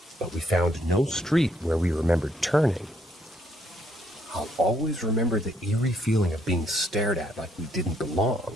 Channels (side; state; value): both; normal; correlation 0.70